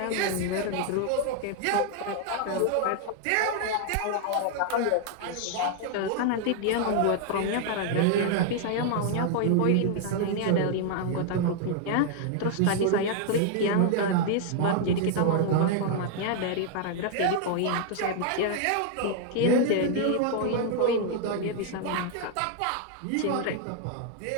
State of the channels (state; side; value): different; both; correlation 0.00